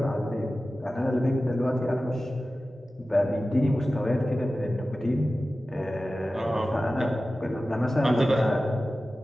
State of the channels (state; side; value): normal; both; correlation 0.95